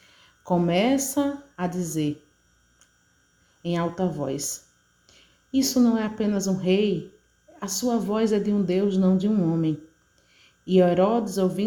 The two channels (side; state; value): both; identical; correlation 1.00